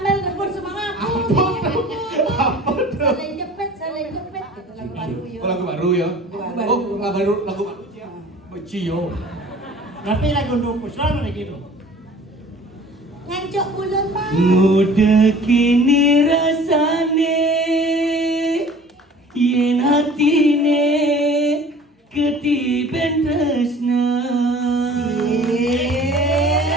rebut semangat. Apa tuh? Saling jepit. Gitu lagu baru yo. Oh, lagu baru ya? Oh, lagu baru. Beci yo. Tapi lagu untuk puslan ada gitu. Ngancok bulan bon. Muda kini rasane yen hatine ketiben tresna.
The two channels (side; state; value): both; normal; correlation 0.47